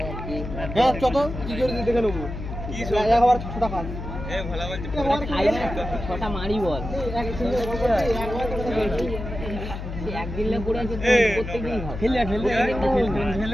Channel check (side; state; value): left; noise; hum, 7 dB below the sound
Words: ছটা মারি বল একদিন পড়ে আছে প্রত্যেকদিন